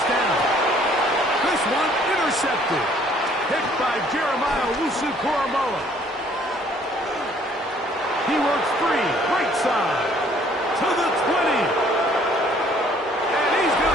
down. This one intercepted. Picked by Jeremiah Wusu-Koromoa. He works free, right side, to the 20. And he's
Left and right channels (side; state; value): both; normal; correlation 0.60